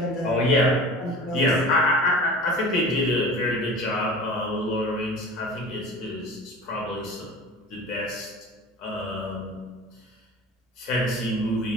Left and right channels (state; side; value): normal; both; correlation 0.38